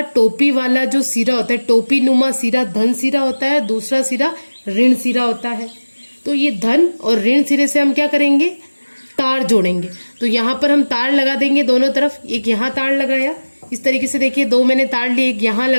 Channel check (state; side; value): inverted; both; correlation -1.00